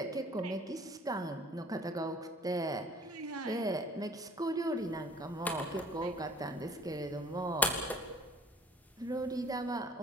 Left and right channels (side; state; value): both; normal; correlation 0.50